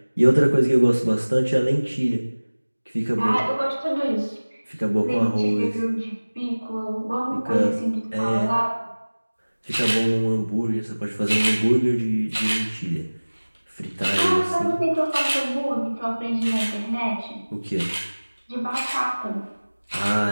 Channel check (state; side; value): inverted; both; correlation -1.00